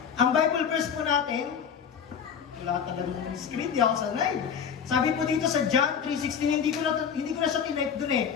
Ang Bible verse po natin, wala talaga ng screen, di ako sanay. Sabi po dito sa John 3:16, hindi ko na siya tinype dun eh.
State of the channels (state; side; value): quieter; right; 7.4 dB